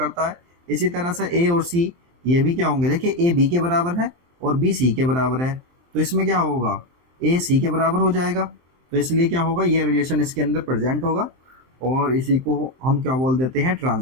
है। इसी तरह से ए और सी ये भी क्या होंगे, देखिए ए बी के बराबर है और बी सी के बराबर है। तो इसमें क्या होगा, ए सी के बराबर हो जाएगा, तो इसलिए क्या होगा, ये रिलेशन इसके अंदर प्रेजेंट होगा और इसी को हम क्या बोल देते हैं,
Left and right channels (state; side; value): late; left; 23 ms